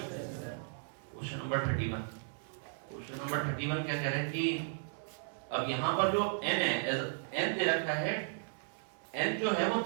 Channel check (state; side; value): silent; left; digital silence